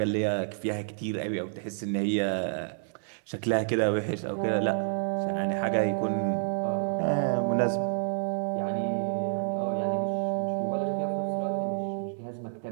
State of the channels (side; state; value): left; silent; digital silence